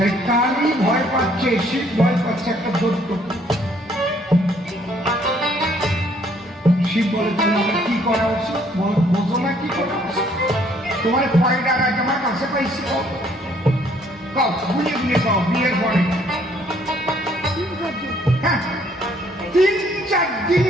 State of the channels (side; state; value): both; normal; correlation 0.64